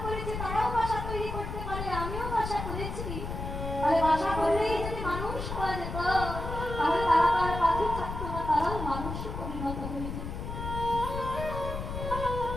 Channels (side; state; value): left; noise; rumble, 6 dB below the sound